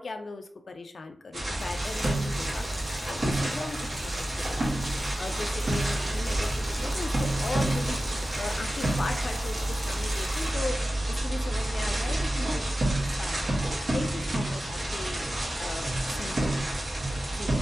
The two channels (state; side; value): normal; both; correlation 0.94